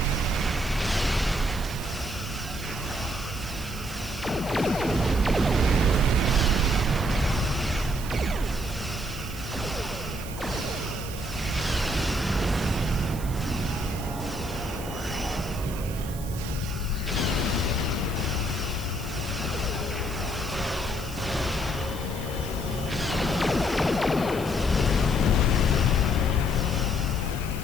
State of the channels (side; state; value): right; noise; hiss, 14 dB below the sound